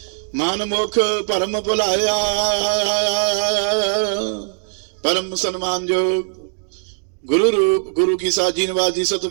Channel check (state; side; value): silent; left; 63 dB below the other